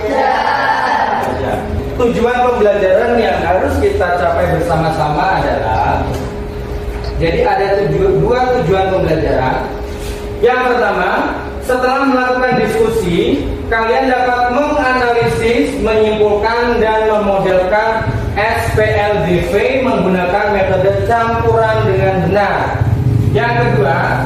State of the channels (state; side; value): identical; both; correlation 1.00